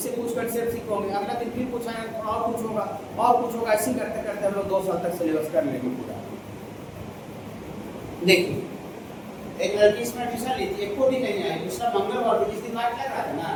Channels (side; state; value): both; identical; correlation 1.00